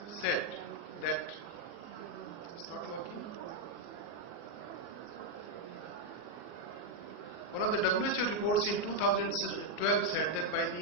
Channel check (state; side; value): late; right; 24 ms